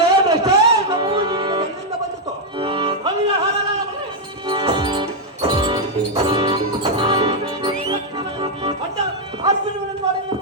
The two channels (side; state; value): both; normal; correlation -0.02